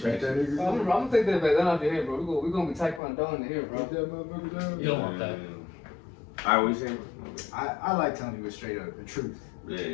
I'm gonna take that back. That off your head, bro. We're gonna be taekwondo in here, bro. You don't want that. Alright, what you saying? I like telling people straight up the truth.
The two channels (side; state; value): right; drops out; at 3.0 s